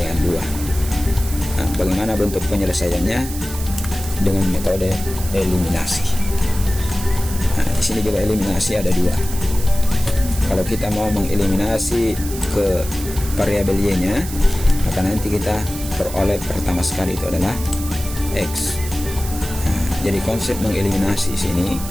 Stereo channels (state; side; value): noise; right; hiss, 11 dB below the sound